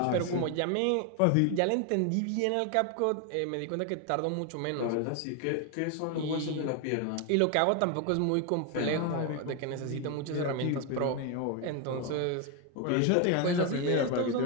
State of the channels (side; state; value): both; different; correlation 0.01